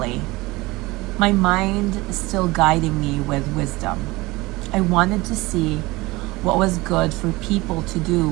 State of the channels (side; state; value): left; quieter; 21.4 dB